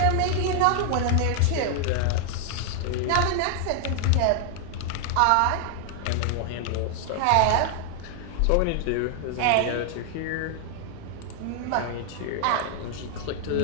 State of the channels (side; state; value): both; different; correlation 0.00